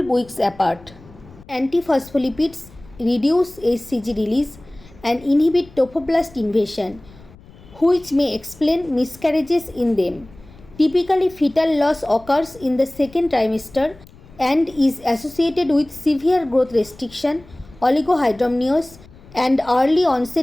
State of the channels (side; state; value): left; noise; rumble, 23 dB below the sound